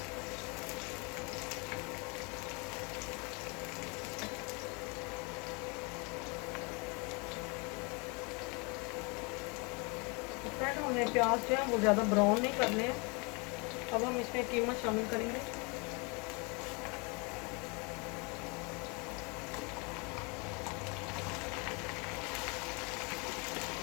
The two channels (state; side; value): quieter; right; 30.7 dB